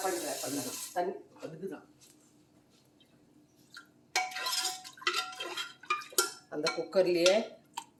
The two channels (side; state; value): both; identical; correlation 1.00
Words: பண்ணுறேன் தண்ணி அந்த குக்கர்லேயே